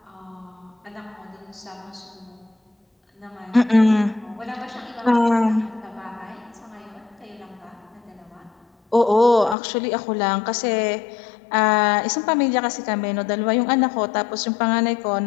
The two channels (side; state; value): right; drops out; at 9.6 s